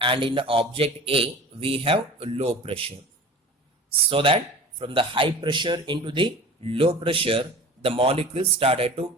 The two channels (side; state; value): both; normal; correlation 0.39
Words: and in the object A we have low pressure. So that from the high pressure into the low pressure the molecule started to